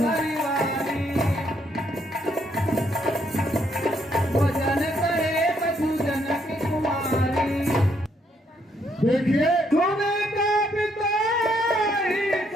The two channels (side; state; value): both; normal; correlation 0.72